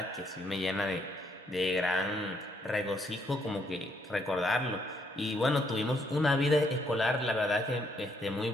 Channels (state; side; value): normal; both; correlation 0.72